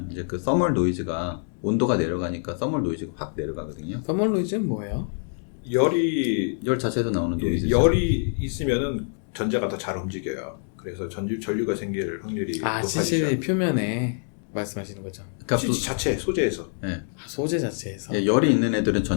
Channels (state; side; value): silent; right; 61 dB below the other